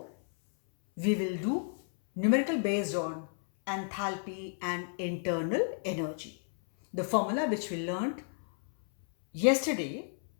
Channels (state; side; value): silent; right; 57 dB below the other